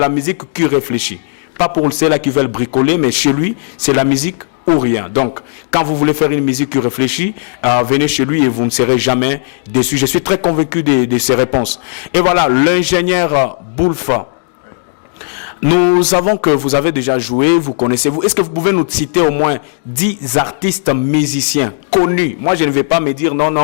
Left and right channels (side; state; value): right; silent; digital silence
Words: musique, qui réfléchit. Pas pour ceux-là qui veulent bricoler, mais chez lui, c'est la musique ou rien. Donc, quand vous voulez faire une musique qui réfléchit, venez chez lui et vous ne serez jamais déçus. Je suis très convaincu de ses réponses. Et voilà, l'ingénieur Boulfa. Nous savons que vous avez déjà joué, vous connaissez-vous. Est-ce que vous pouvez nous citer au moins 10 artistes musiciens connus? Moi, je ne vais pas me dire